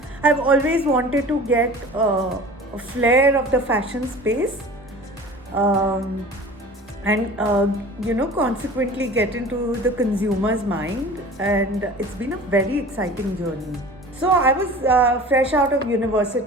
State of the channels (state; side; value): normal; both; correlation 0.41